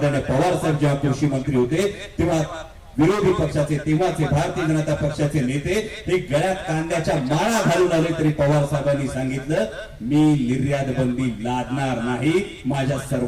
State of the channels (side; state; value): both; identical; correlation 1.00